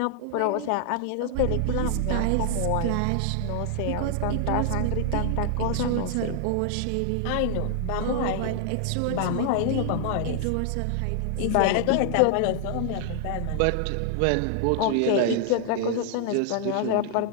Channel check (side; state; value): both; different; correlation 0.00